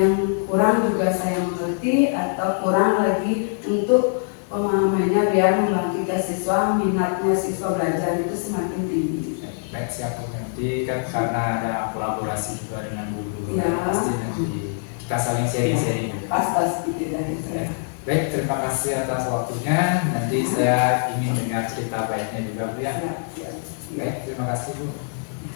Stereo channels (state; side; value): silent; right; digital silence